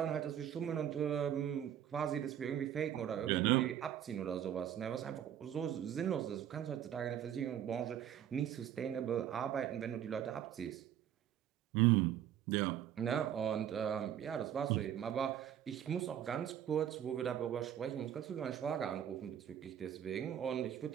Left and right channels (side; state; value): left; quieter; 10.2 dB